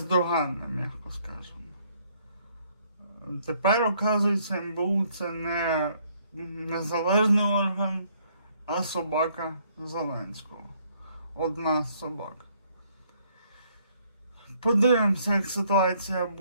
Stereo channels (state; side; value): inverted; both; correlation -0.66